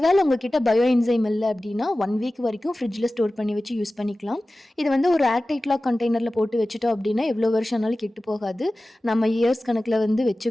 உங்ககிட்ட பயோ என்சைம் இல்லை அப்படின்னா 1 வீக் வரைக்கும் ஃப்ரிட்ஜில் ஸ்டோர் பண்ணி வச்சு யூஸ் பண்ணிக்கலாம். இது வந்து ஒரு ஏர்டைட் லாக் கண்டெய்னரில் போட்டு வச்சுட்டோம் அப்படின்னா எவ்வளோ வருஷம் ஆனாலும் கெட்டு போகாது. நம்ம இயர்ஸ் கணக்கில் வந்து வச்சு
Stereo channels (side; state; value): both; normal; correlation 0.96